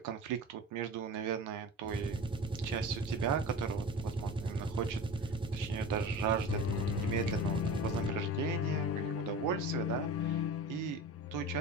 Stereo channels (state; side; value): normal; both; correlation 0.33